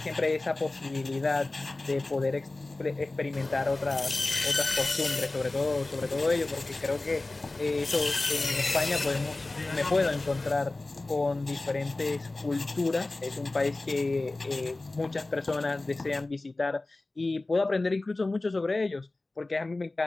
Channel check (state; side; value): quieter; right; 3.0 dB